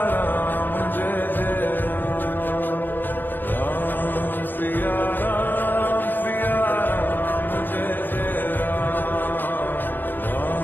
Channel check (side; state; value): right; late; 0.092 ms